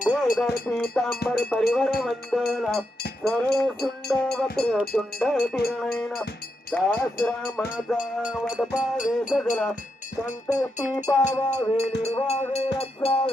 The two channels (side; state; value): both; normal; correlation 0.84